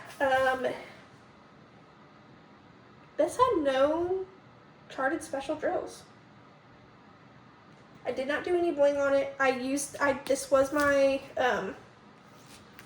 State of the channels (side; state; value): both; identical; correlation 1.00